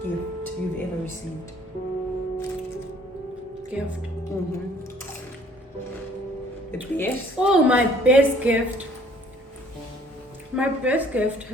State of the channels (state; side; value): normal; both; correlation 0.57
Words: gift you've ever received? Gift. The best? Oh, my best gift. My best gift